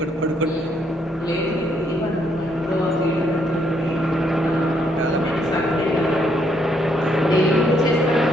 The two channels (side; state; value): both; normal; correlation 0.72